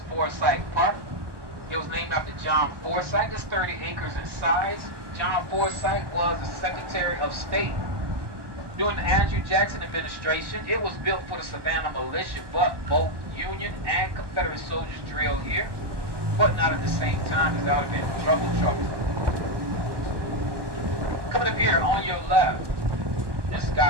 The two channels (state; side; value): late; left; 1.2 ms